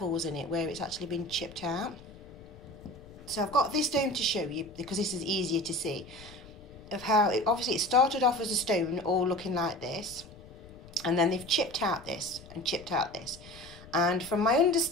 in it where it's actually been chipped out. So I've got this stone to show you because this is easier to see of how obviously it started off as a stone all looking like this, and then they've chipped out this and chipped out this. And from my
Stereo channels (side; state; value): left; noise; rumble, 19 dB below the sound